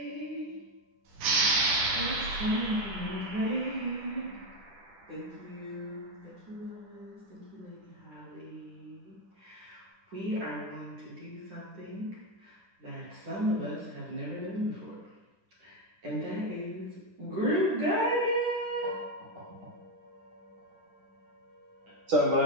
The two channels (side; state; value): left; late; 10 ms